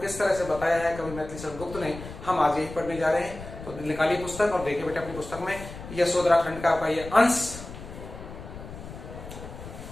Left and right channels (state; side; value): noise; left; rumble, 12 dB below the sound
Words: तरह से बताया है कवि मैथिली शरण गुप्त ने। हम आज यही पढ़ने जा रहे हैं। तो निकालिए पुस्तक और देखिए बेटे अपनी पुस्तक में यशोधरा खंड का ये अंश।